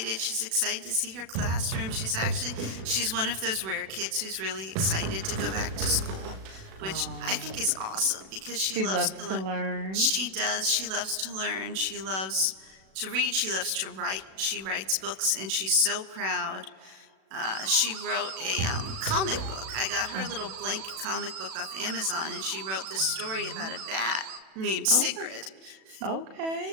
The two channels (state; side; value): late; left; 37 ms